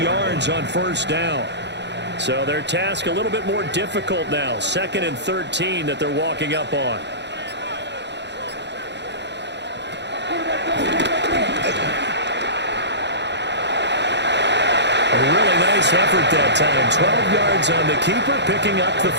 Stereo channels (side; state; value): left; late; 0.51 ms